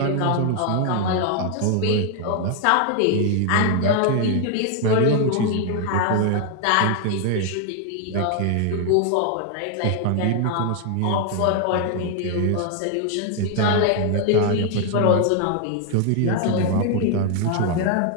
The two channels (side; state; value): both; different; correlation 0.00